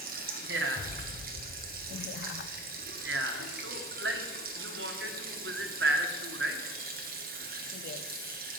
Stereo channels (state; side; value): normal; both; correlation 0.37